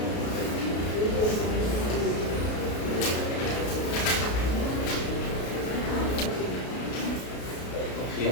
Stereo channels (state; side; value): late; right; 33 ms